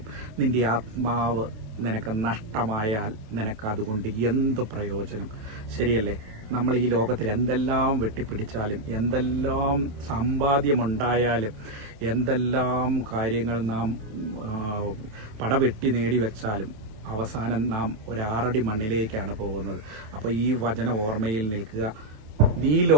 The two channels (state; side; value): late; left; 28 ms